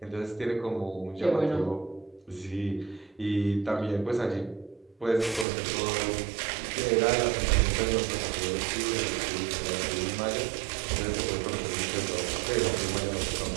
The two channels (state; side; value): drops out; left; at 5.5 s